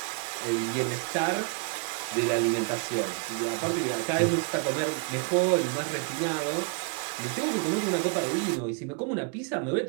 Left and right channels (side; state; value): left; quieter; 33.6 dB